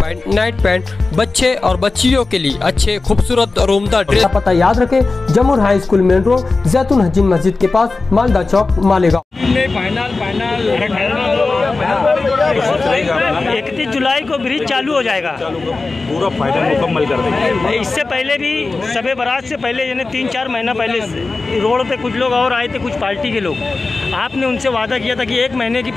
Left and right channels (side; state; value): right; quieter; 3.7 dB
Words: night pant, बच्चे और बच्चियों के लिए अच्छे खूबसूरत और उम्दा ड्रेस। पता याद रखें, जमुर हाई स्कूल मेन रोड, जैतून हजीन मस्जिद के पास, मालदा चौक, मालेगांव। 31 जुलाई को ब्रिज चालू हो जाएगा, पूरा फाइनल मुकम्मल कर देंगे। इससे पहले भी शबे बारात से पहले यानी 3-4 महीना पहले रोड पे कुछ लोग और आए थे, कुछ पार्टी के लोग। आपने उनसे वादा किया था कि 1 महीने की